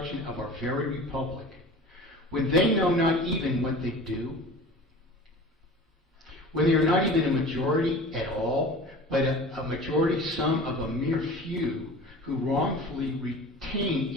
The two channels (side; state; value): both; normal; correlation 0.39